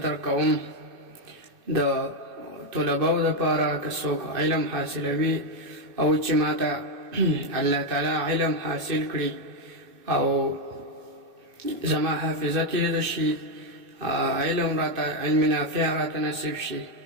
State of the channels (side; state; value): left; late; 2.6 ms